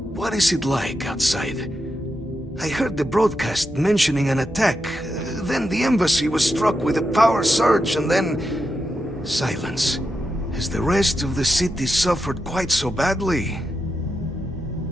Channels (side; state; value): both; normal; correlation 0.86